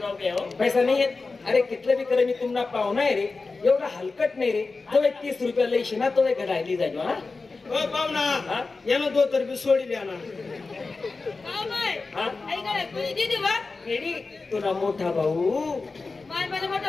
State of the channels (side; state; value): right; quieter; 3.9 dB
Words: घे हो. पैसा नाही येत अरे कितलं बी करे मी तुम्हाला पाहुणा आहे रे एवढा हलकट नाही रे तो 30 रुपया लईशी ना तो घडायली जायचो हा हो पाहुणा यानं दो तर बी सोडली ना तुला मोठा भाऊ मला